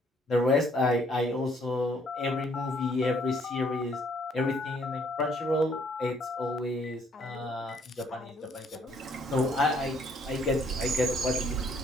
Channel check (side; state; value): both; normal; correlation 0.65